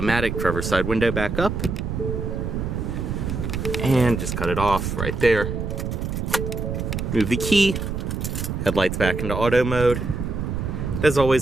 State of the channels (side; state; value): right; noise; rumble, 3 dB below the sound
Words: driver's side window back up, and just cut it off right there. Move the key, headlights back into auto mode. As